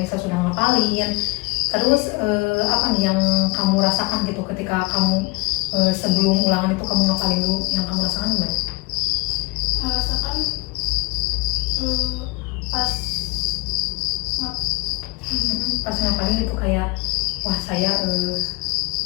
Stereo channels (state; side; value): quieter; right; 26.2 dB